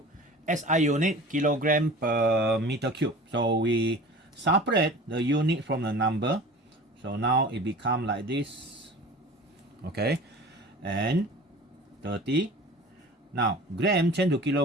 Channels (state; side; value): normal; both; correlation 0.40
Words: SI unit kilogram per meter cube. So we separate the unit from the number. So now it become like this. Okay, and 30. Now, gram changed to